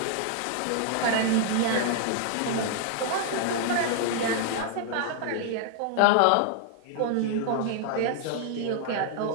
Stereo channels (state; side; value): different; both; correlation 0.00